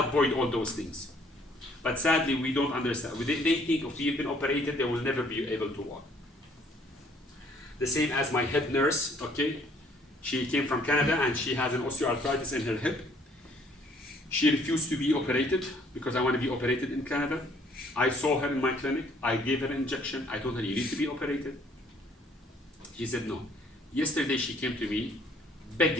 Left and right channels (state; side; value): normal; both; correlation 0.62